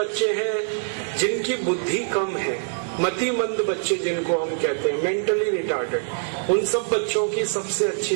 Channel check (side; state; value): left; silent; digital silence